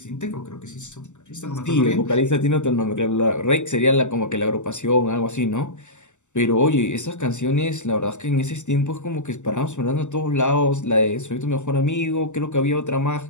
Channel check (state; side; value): late; right; 0.84 ms